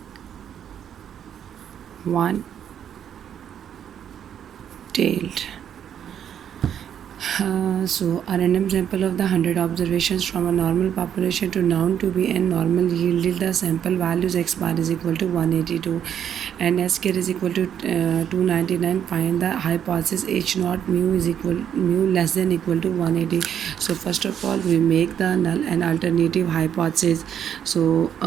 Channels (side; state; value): left; quieter; 9.1 dB